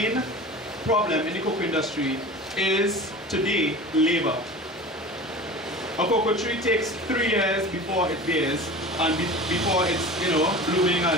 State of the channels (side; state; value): both; normal; correlation 0.36